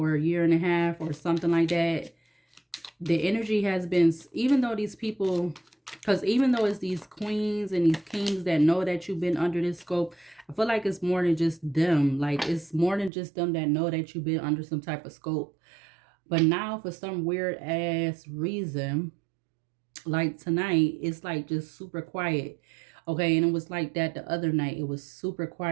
year and a half or something like that, the energy has been, even though these people, because even though it's these queens and these kings that know that you've been under this scope, I feel like it's more than just them. Like, it's more than just them that know that you've been under some type of scope. But now, for some weird ass reason, like tonight, it's like just super quiet. Okay, and it was like that the other night. It was super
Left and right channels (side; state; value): left; drops out; at 13.1 s